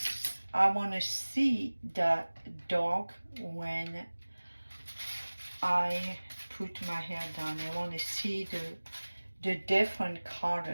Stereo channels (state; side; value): inverted; both; correlation -1.00